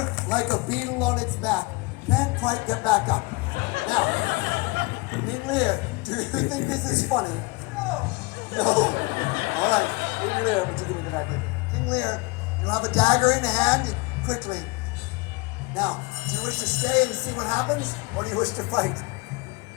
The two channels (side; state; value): right; quieter; 24.9 dB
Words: like a beetle on its back, can't quite get back up. Now, King Lear, do you think this is funny? No. No. All right, King Lear, would you give me the dagger? King Lear, you have a dagger in hand, quickly. Now, do you wish to stay and see what happens, or do you wish to fight?